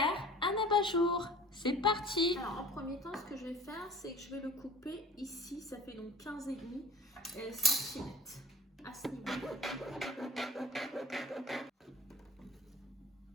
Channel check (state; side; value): normal; both; correlation 0.40